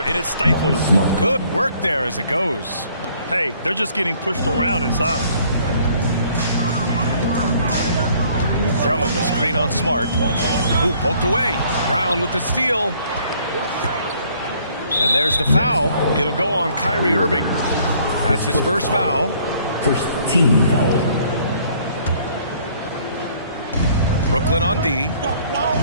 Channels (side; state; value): both; inverted; correlation -0.61